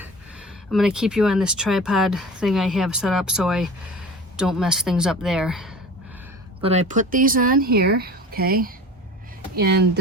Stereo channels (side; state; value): both; normal; correlation 0.37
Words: I'm gonna keep you on this tripod thing I have set up so I don't mess things up there. But I put these on here, okay? And